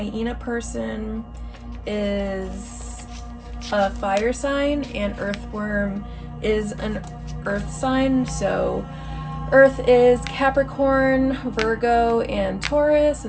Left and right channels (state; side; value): identical; both; correlation 1.00